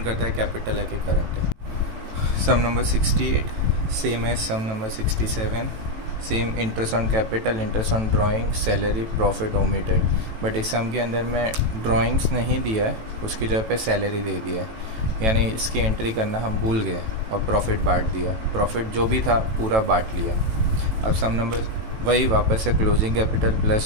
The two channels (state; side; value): late; left; 18 ms